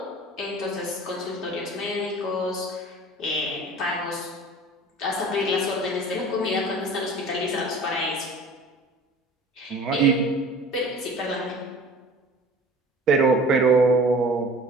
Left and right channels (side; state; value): both; normal; correlation 0.42